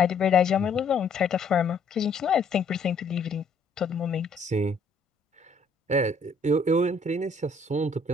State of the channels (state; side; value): quieter; right; 3.5 dB